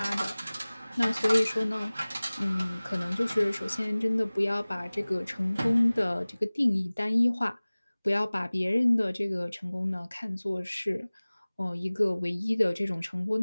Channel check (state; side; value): inverted; both; correlation -0.99